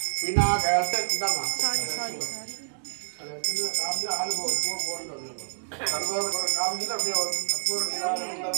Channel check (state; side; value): silent; left; digital silence